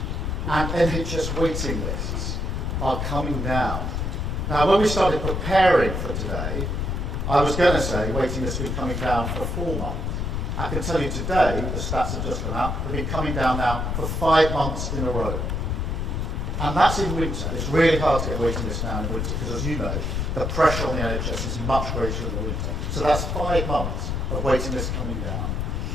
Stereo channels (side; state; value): left; noise; rumble, 1 dB below the sound